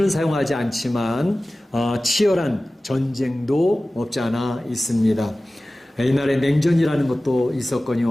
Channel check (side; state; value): both; normal; correlation 0.97